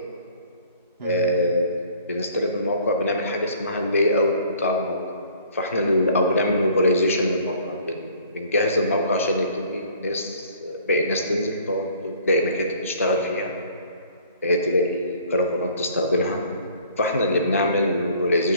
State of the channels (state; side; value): inverted; both; correlation -0.55